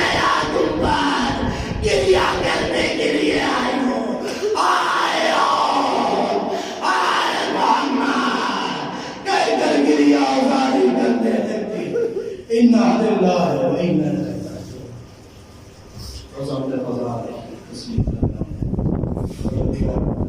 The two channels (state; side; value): identical; both; correlation 1.00